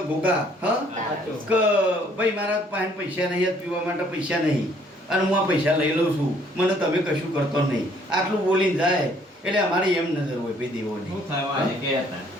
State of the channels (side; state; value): both; normal; correlation 0.62